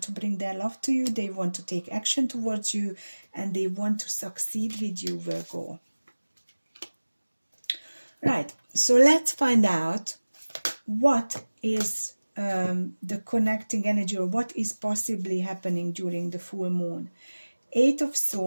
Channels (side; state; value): both; inverted; correlation -1.00